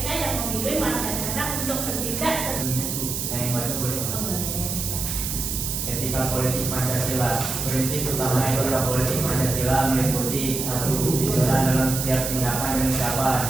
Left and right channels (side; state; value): right; noise; hiss, 3 dB below the sound